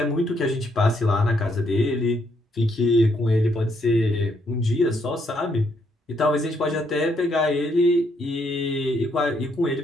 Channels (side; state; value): both; normal; correlation 0.73